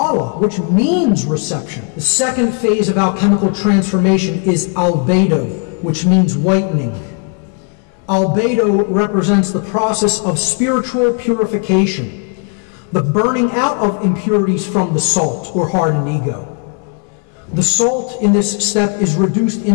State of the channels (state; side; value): quieter; right; 38.7 dB